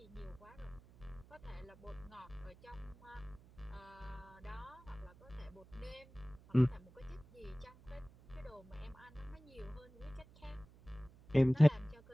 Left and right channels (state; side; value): noise; right; hum, 22 dB below the sound